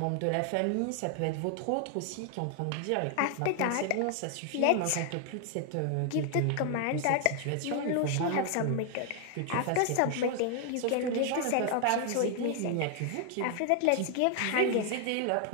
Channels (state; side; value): different; both; correlation 0.00